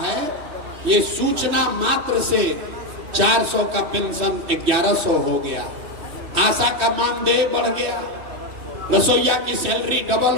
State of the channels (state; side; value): late; left; 3.1 ms